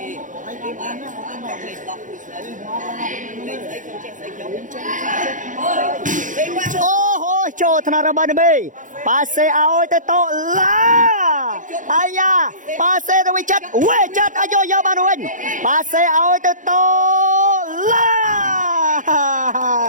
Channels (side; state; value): left; late; 0.37 ms